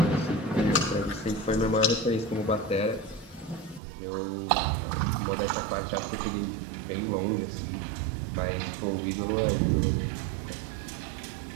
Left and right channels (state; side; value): drops out; left; at 3.8 s